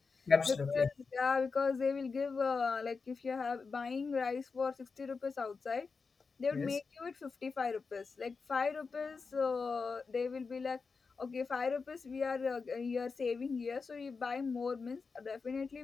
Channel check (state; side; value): quieter; right; 4.8 dB